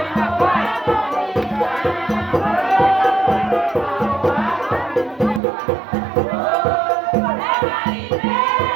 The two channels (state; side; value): drops out; left; at 5.4 s